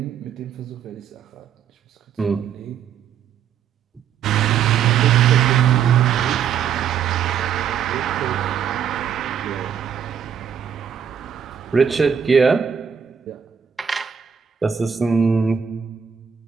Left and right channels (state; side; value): quieter; left; 7.9 dB